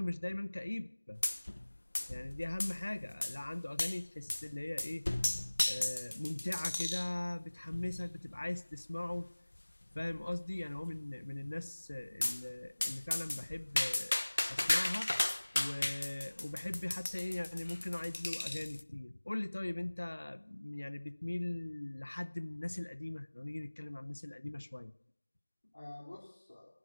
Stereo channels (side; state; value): both; inverted; correlation -1.00